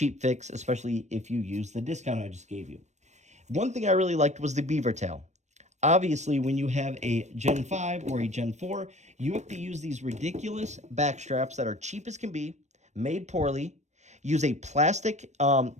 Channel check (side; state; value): left; late; 0.34 ms